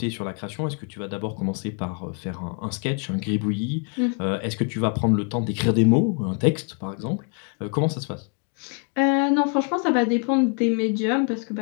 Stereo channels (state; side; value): quieter; right; 39.7 dB